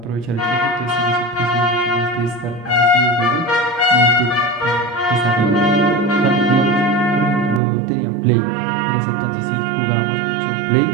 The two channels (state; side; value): drops out; left; at 7.6 s